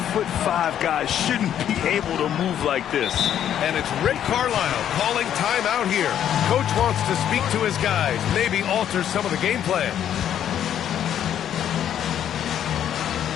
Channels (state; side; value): quieter; right; 10.1 dB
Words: guys shouldn't be able to move like this. And it's Rick Carlisle calling timeout here. Coach wants to speak to his guys, maybe alter some of the game plan.